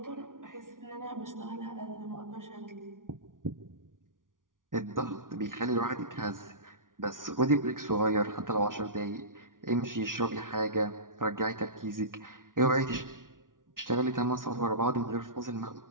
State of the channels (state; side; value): late; left; 0.89 ms